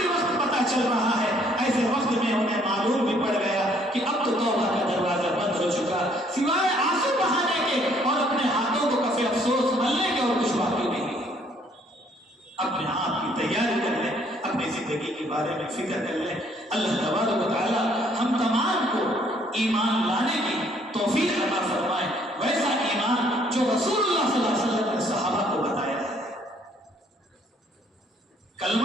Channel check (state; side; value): normal; both; correlation 0.64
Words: وقت پتہ چل رہا ہے، ایسے وقت میں انہیں معلوم بھی پڑ گیا کہ اب تو توبہ کا دروازہ بند ہو چکا، سوائے آنسو بہانے کے اور اپنے ہاتھوں کو کفے افسوس ملنے کے اور کچھ باقی نہیں۔ اپنے آپ کی تیاری کر لیں، اپنی زندگی کے بارے میں فکر کر لیں۔ اللہ تبارک و تعالی ہم تمام کو ایمان لانے کی توفیق عطا فرمائے، ویسا ایمان جو رسول اللہ صلی اللہ علیہ وسلم نے صحابہ کو بتایا ہے۔